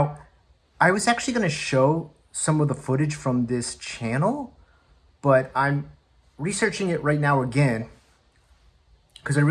I was actually going to show some of the footage from this channel, but I'm researching it right now again because I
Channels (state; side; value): identical; both; correlation 1.00